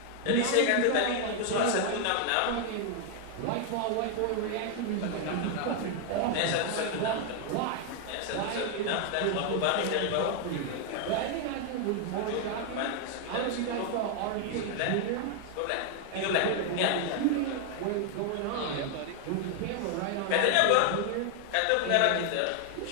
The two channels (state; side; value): different; both; correlation 0.00